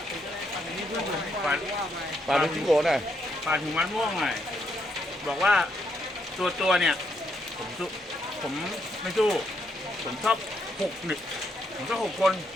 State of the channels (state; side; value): normal; both; correlation 0.76